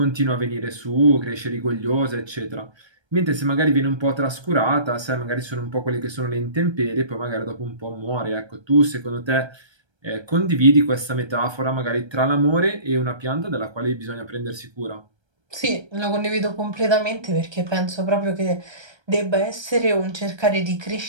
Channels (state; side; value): late; left; 1.3 ms